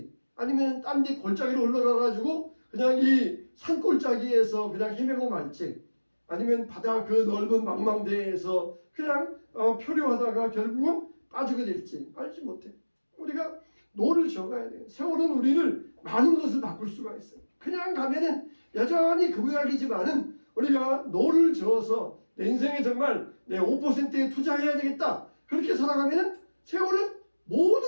아니면 딴 데 골짜기로 올라가 가지고 그냥 이 산골짜기에서 그냥 헤매고 말지 아니면 바다 그 넓은 망망대해에서 그냥 표류하다가 결국은 빠지게 될지 알지 못해. 우리가 노를 저어가야 돼요. 세월은 우리를 많은 것을 바꿀 수가 있어요. 그냥 가면은 여전히 그 모양이지만은 우리가 노를 저어서 내 인생에 정말 내 5%에 투자해야 되겠다. 그렇게 살아가면은 세월은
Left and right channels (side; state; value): both; inverted; correlation -1.00